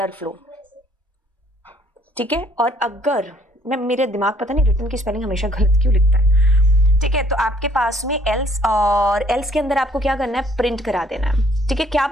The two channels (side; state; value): both; normal; correlation 0.62